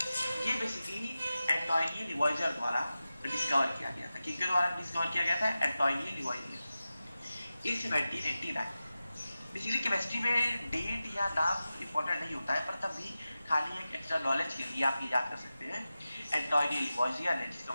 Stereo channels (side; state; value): both; inverted; correlation -0.94